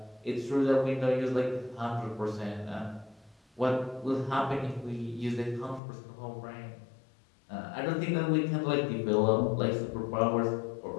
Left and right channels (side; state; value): right; drops out; at 5.8 s